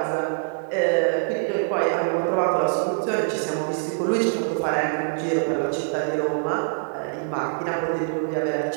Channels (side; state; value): left; silent; 62 dB below the other